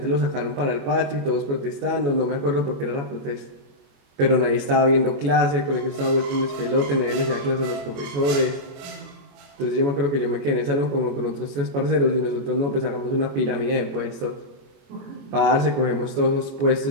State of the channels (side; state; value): left; late; 21 ms